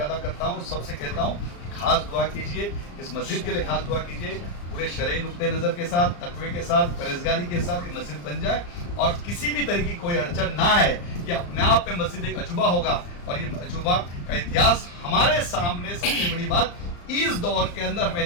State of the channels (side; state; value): right; late; 34 ms